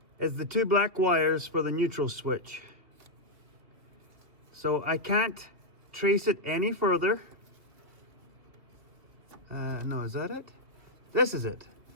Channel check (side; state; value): left; late; 2.5 ms